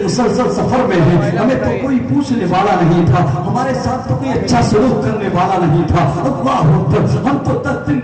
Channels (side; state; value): both; identical; correlation 1.00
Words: مسلسل سفر میں ہیں، ہمیں تو کوئی پوچھنے والا نہیں تھا، ہمارے ساتھ تو کوئی اچھا سلوک کرنے والا نہیں تھا۔ اللہ اکبر۔ ہم تو 10 دن